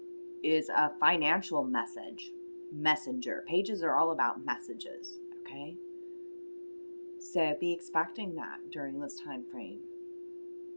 is a financial messenger. Pages are all about messages, okay? So be expecting that during this time frame.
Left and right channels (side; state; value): both; inverted; correlation -1.00